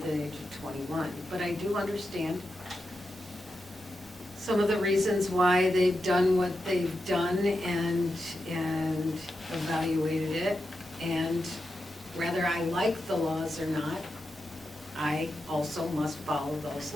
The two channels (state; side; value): normal; both; correlation 0.88